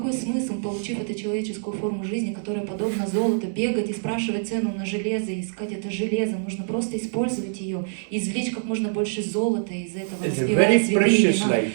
смысл, получив эту человеческую форму жизни, которая подобна золоту, бегать и спрашивать цену на железо, и искать это железо? Нужно просто использовать ее, извлечь как можно больше золота из этого, распевая святые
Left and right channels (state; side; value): silent; left; digital silence